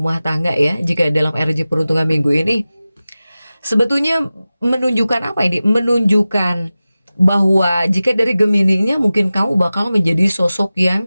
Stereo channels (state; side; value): inverted; both; correlation -0.96